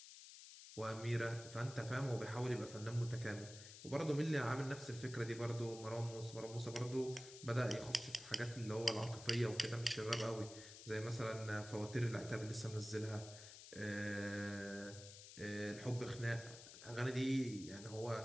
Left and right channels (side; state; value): left; noise; hiss, 14 dB below the sound